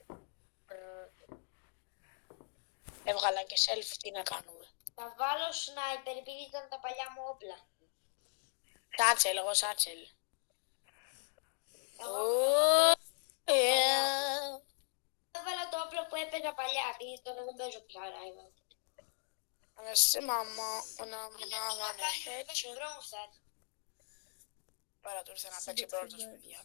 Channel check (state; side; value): silent; right; digital silence